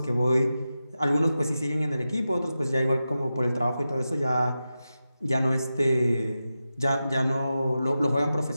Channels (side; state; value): both; inverted; correlation -0.92